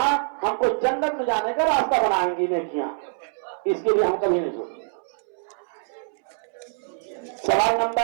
हमको जन्नत में जाने का रास्ता बनाएंगी नेकियां। इसके लिए हम कभी नहीं सोचते। सवाल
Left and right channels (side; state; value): left; silent; 62 dB below the other